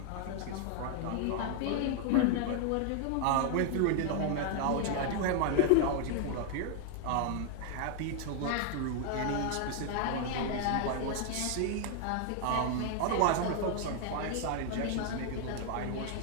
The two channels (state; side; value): different; both; correlation 0.00